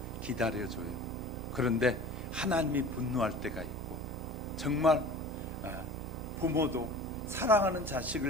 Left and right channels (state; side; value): normal; both; correlation 0.40